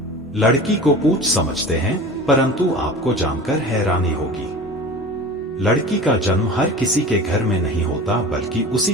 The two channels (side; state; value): both; normal; correlation 0.36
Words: लड़की को पूछ समझते हैं, परंतु आपको जानकर हैरानी होगी, लड़की का जन्म हर किसी के घर में नहीं होता, बल्कि उसी